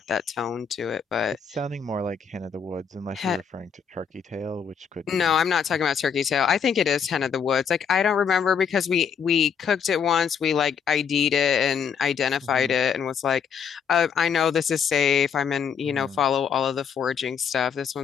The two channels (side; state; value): right; quieter; 7.0 dB